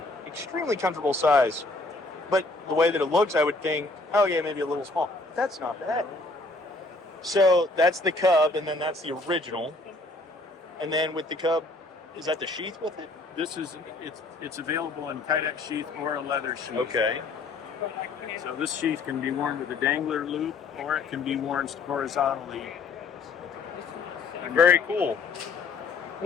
comfortable size. But the way that it looks, I would think, oh yeah, maybe a little small. That's not bad. So that's the Cub, and then that's the original. And then with the Cub, is that the sheath with it? This is it's available in Kydex sheath or a leather sheath. Okay. So this sheath can be worn with a dangler loop, or it can be worn horizontally. Very cool.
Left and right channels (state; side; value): quieter; right; 3.4 dB